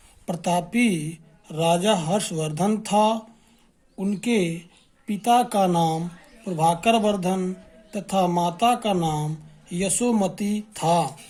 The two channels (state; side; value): identical; both; correlation 1.00